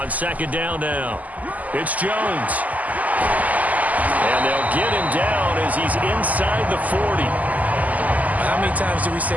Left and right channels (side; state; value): left; late; 0.077 ms